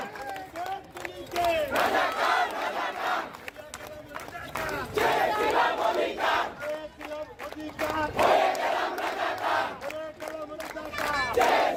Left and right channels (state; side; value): identical; both; correlation 1.00